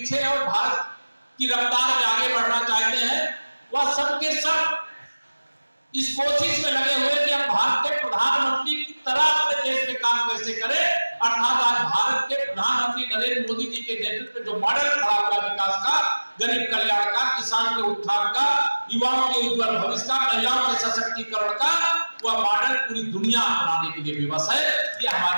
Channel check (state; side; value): inverted; both; correlation -1.00